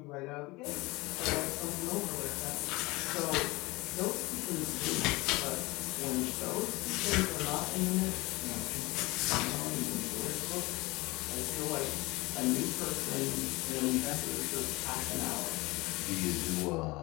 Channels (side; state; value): right; quieter; 22.5 dB